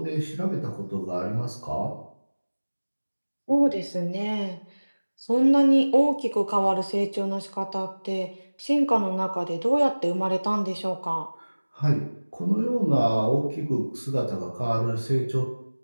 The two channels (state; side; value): inverted; both; correlation -1.00